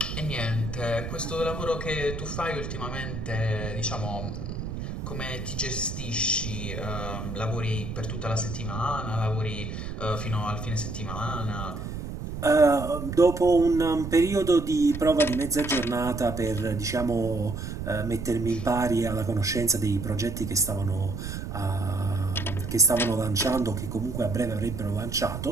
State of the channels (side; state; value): right; noise; rumble, 6 dB below the sound